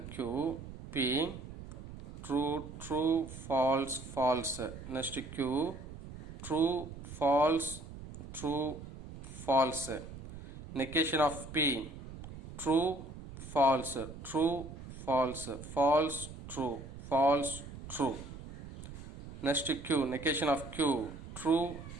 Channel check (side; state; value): right; noise; rumble, 13 dB below the sound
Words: Q. P true true false false. Next Q true false true false. Negation of P true false true false false true false true. Next Q negation of Q true